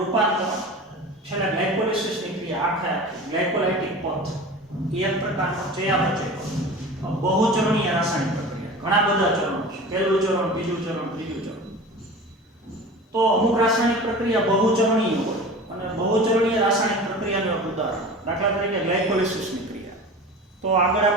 છેલ્લે ગ્લાયકોલિસિસની ક્રિયા આખા ગ્લાયકોલાઇટિક પથ એ એક પ્રકારનો ચયાપચય બહુચરણીય રાસાયણિક પ્રક્રિયા ઘણા બધા ચરણો છે પહેલું ચરણ બીજું ચરણ ત્રીજું ચરણ તો અમુક રાસાયણિક પ્રક્રિયા બહુચરણીય હોય અને બહુચરણીય રાસાયણિક પ્રક્રિયાનું એક ઉદાહરણ દાખલા તરીકે ગ્લાયકોલિસિસની ક્રિયા તો આગળ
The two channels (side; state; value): both; normal; correlation 0.35